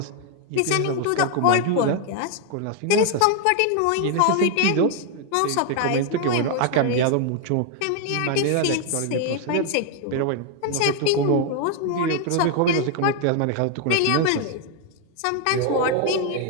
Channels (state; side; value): different; both; correlation 0.00